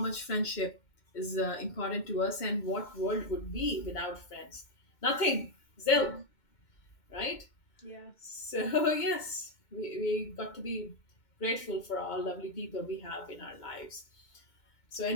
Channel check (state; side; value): late; right; 2.2 ms